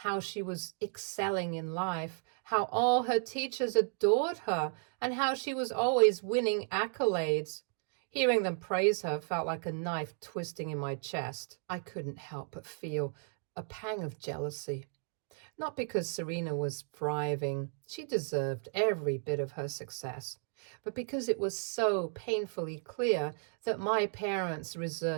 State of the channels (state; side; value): silent; left; 55 dB below the other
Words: she was excelling in life, how all her teachers adored her, and how she was always winning accolades. Hearing them praise her felt like a knife twisting in my chest. I couldn't help but feel a pang of jealousy. Not because Serena was thriving, she deserved every bit of her success, but because it was so painfully clear that my parents